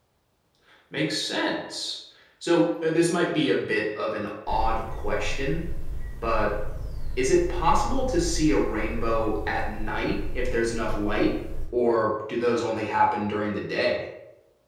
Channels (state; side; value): identical; both; correlation 1.00